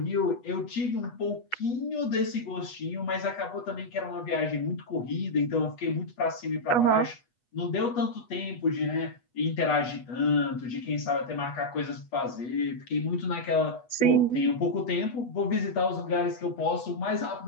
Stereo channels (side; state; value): right; late; 8.2 ms